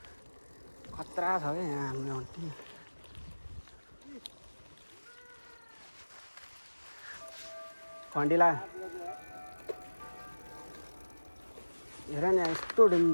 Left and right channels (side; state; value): both; inverted; correlation -1.00